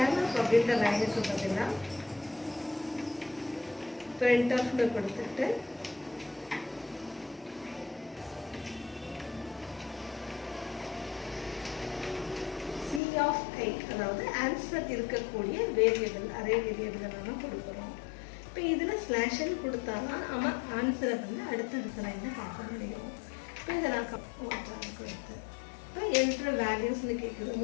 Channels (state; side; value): drops out; right; at 13.0 s